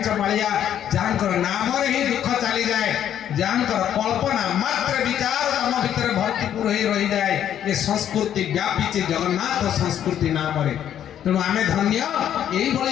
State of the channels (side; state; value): right; quieter; 10.2 dB